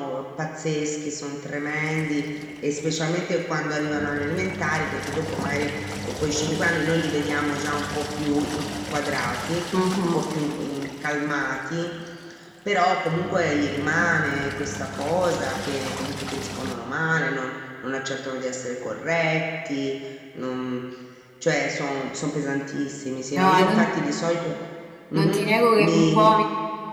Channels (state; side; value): identical; both; correlation 1.00